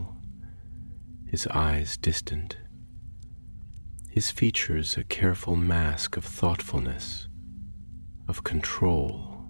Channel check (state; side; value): inverted; both; correlation -1.00